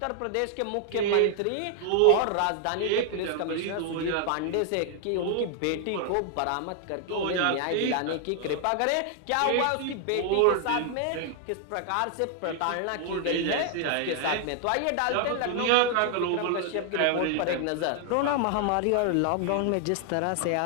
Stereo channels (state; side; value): different; both; correlation 0.00